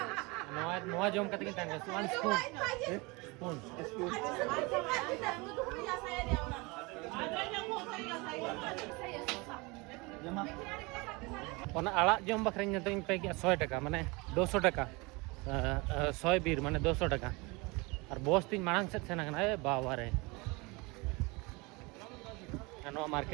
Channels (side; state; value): left; quieter; 26.1 dB